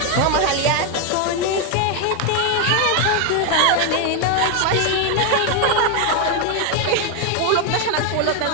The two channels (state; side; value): different; both; correlation 0.01